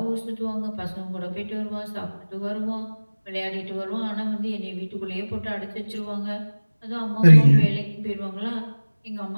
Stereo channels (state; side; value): inverted; both; correlation -1.00